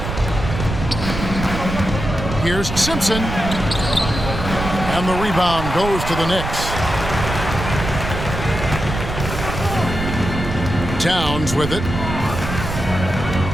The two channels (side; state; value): right; noise; rumble, 5 dB below the sound